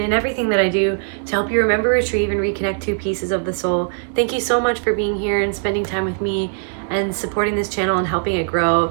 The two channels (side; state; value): left; silent; 66 dB below the other